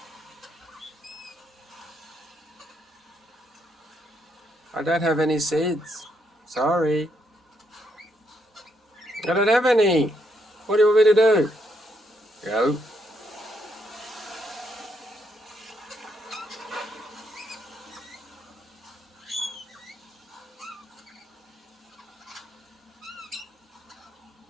I don't have any seeds. Sorry. I don't have any. What do you want me to do? Go.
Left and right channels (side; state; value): both; normal; correlation 0.76